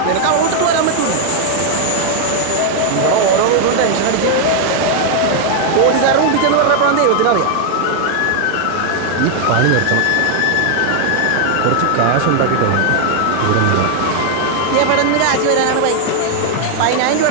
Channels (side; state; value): both; different; correlation 0.00